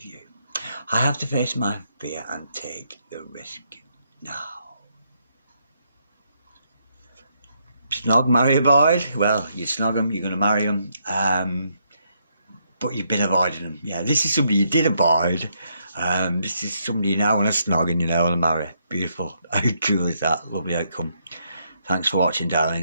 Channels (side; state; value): both; inverted; correlation -0.76